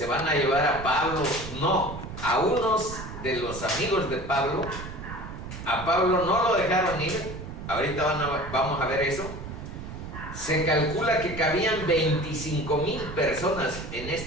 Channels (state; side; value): noise; right; rumble, 10 dB below the sound